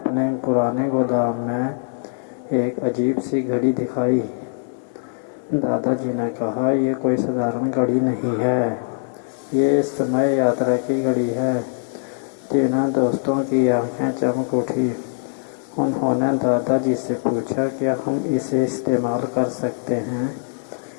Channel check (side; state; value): right; silent; digital silence